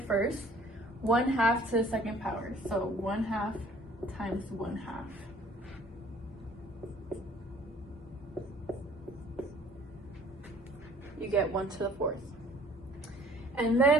first. 1/2 to the second power. So 1/2 times 1/2. You get 1 to the 4th. And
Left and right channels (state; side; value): normal; both; correlation 0.53